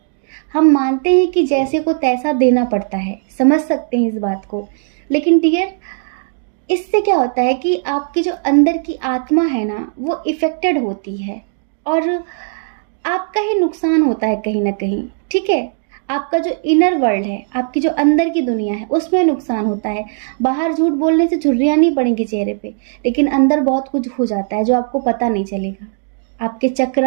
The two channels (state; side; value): silent; left; 68 dB below the other